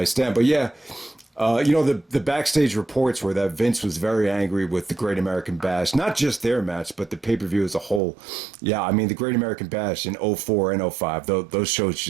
Stand. But yeah. The backstage reports were that Vince was very angry with the Great American Bash, not just their match, but the pay-per-view as a whole. Yeah, I mean, the Great American Bash in 04 and 05, those shows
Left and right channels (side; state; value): left; drops out; at 8.0 s